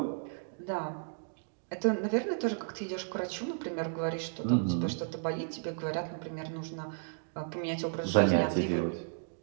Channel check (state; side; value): silent; left; digital silence